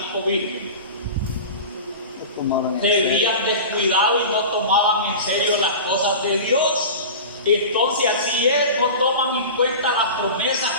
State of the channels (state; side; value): inverted; both; correlation -0.33